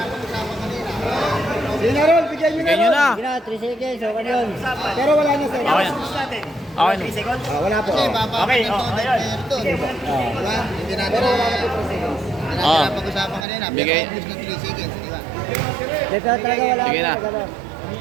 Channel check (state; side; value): drops out; left; at 13.5 s